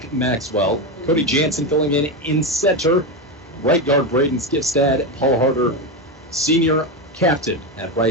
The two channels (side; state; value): both; normal; correlation 0.13